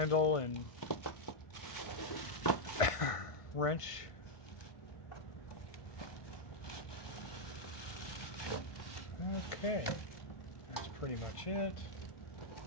and wrench. Okay, that's pretty much it.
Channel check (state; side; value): late; right; 1.5 ms